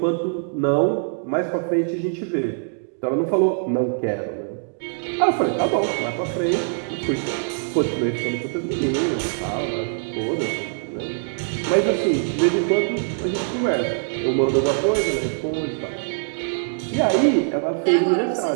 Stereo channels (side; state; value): left; silent; 63 dB below the other